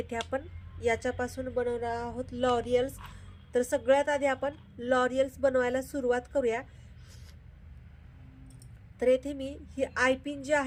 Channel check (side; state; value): both; identical; correlation 1.00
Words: आपण याच्यापासून बनवणार आहोत लॉरियल्स। तर सगळ्यात आधी आपण लॉरियल्स बनवायला सुरुवात करूया। तर येथे मी ही आयपिन जी